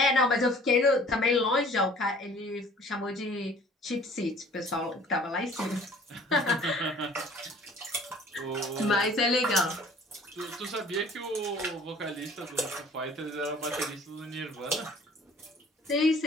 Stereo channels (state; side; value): normal; both; correlation 0.52